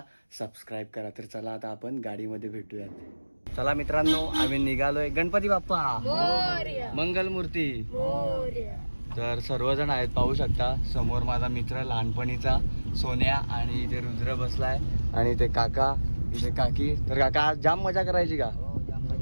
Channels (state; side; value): inverted; both; correlation -1.00